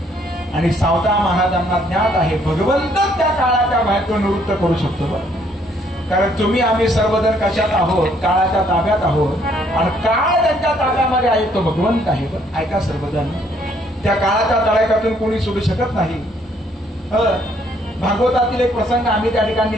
आणि सावता महाराजांना ज्ञात आहे भगवंत त्या काळाच्या भयातून निवृत्त करू शकतो कारण तुम्ही आम्ही सर्वजण कशात आहोत काळाच्या ताब्यात आहोत आणि काळ त्यांच्या ताब्यामध्ये आहे तो भगवंत आहे ऐका सर्वजण त्या काळाच्या तळ्यातून कोणी सोडू शकत नाही भागवतातील एक प्रसंग आम्ही त्या ठिकाणी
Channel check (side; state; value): both; normal; correlation 0.66